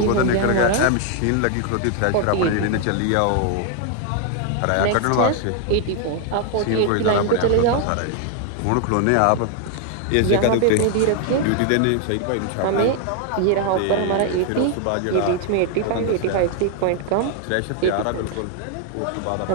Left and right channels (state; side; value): different; both; correlation 0.00